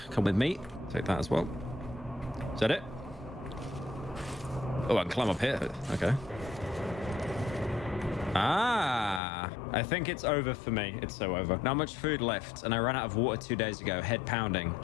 come with me. Take that as well. Is that it? Oh, I can climb up here. Okay. Ah, I think it's over for me. It's so over. Not much food left, and I ran out of water 2 days ago. Head pounding.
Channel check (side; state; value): right; drops out; at 9.2 s